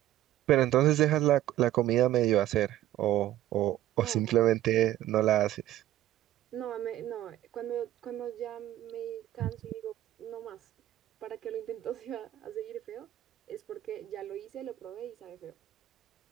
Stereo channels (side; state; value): left; quieter; 13.5 dB